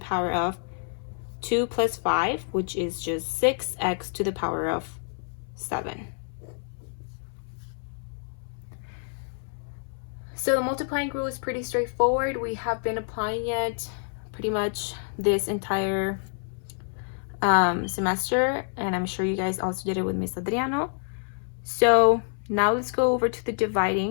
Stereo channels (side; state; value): right; silent; 60 dB below the other